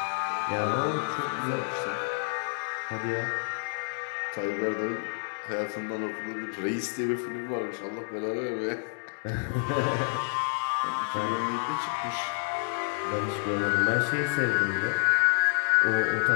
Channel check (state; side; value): silent; right; 59 dB below the other